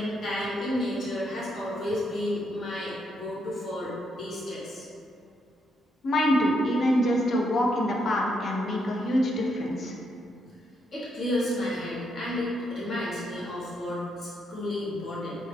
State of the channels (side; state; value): both; normal; correlation 0.77